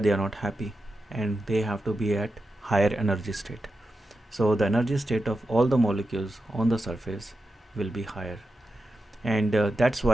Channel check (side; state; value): both; normal; correlation 0.90